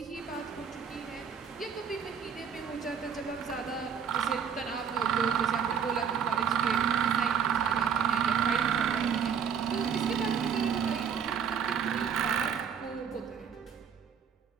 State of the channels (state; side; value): quieter; left; 7.3 dB